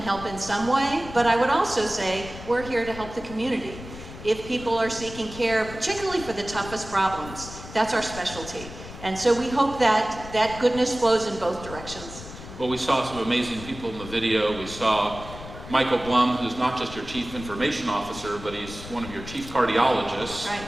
in some way, but I would also say we're here to help the community. If people are seeking care, particularly for the toughest problems, that's our specialty. And so we hope that that goodness flows in both directions. Well, we saw some amazing people in the video. We saw Michael Blum, who's not just your chief information officer, but he's one of your chief cardiologists.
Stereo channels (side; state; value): left; noise; rumble, 13 dB below the sound